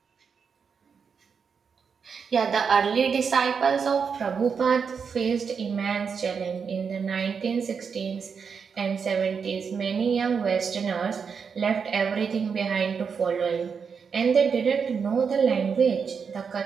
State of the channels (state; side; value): quieter; left; 6.1 dB